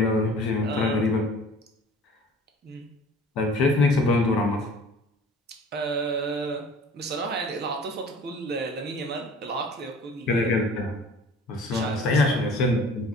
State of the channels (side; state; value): both; normal; correlation 0.48